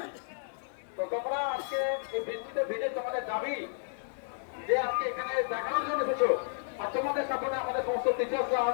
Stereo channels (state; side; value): silent; right; 55 dB below the other